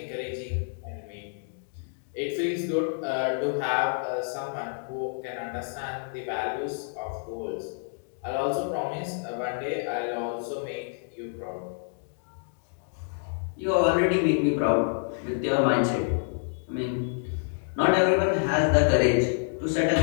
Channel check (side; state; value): right; silent; digital silence